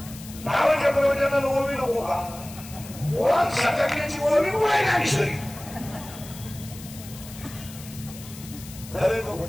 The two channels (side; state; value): left; noise; hiss, 16 dB below the sound